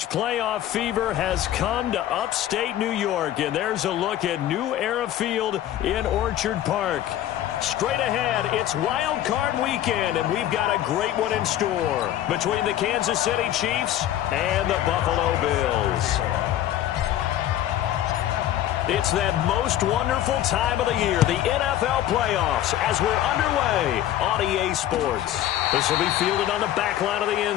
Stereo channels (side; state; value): right; quieter; 12.4 dB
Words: playoff fever has come to upstate New York, and there's a look at New Era Field in Orchard Park. Straight ahead, it's Wild Card Weekend, and we've got a great one in store between the Kansas City Chiefs and the Buffalo Bills. It's that most wonderful time of the year, the NFL playoffs, as we're underway on EA Sports. This will be fielded on the back line of the